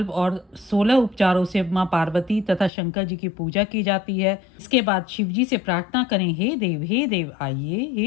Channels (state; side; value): drops out; right; at 2.7 s